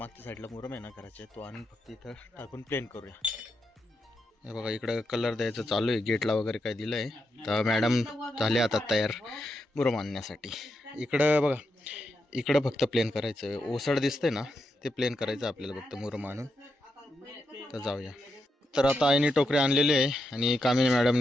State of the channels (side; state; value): both; normal; correlation 0.84